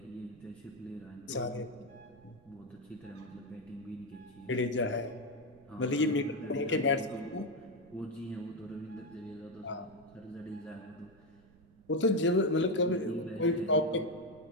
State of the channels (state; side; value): noise; right; rumble, 26 dB below the sound